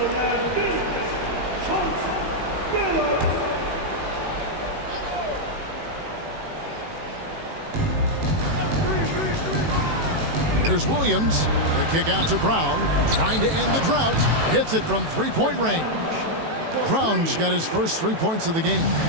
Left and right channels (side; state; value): left; late; 18 ms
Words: Here's Williams. The kick out to Brown. Trying to end the drought. Hits it from three-point range. Brown's got his first 3 points of the game.